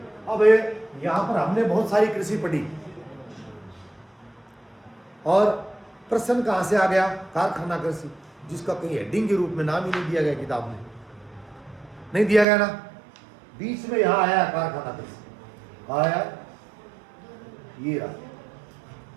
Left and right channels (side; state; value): left; drops out; at 12.5 s